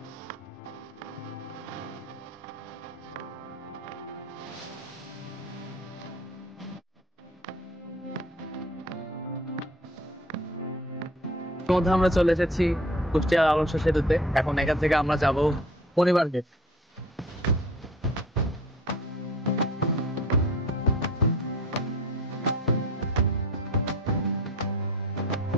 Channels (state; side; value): normal; both; correlation 0.47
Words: মধ্যে আমরা চলে এসেছি কুষ্টিয়া লালন শাহ সেতুতে। এখন এখান থেকে আমরা যাব মণি পার্কে।